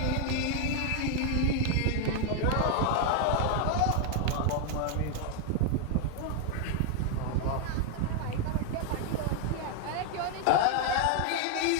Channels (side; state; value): both; different; correlation 0.00